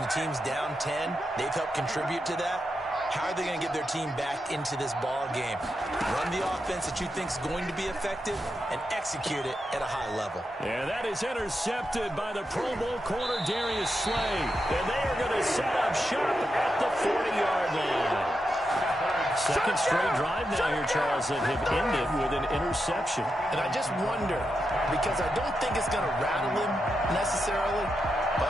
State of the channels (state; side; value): normal; both; correlation 0.86